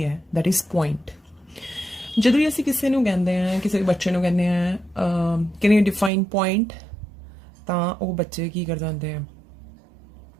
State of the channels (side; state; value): left; drops out; at 6.1 s